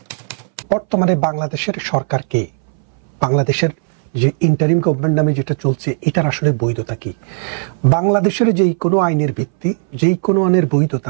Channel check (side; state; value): left; silent; 63 dB below the other